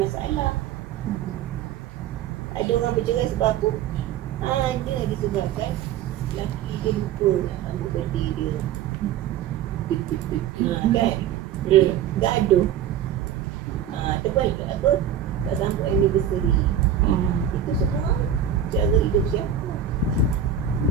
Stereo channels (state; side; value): quieter; left; 9.1 dB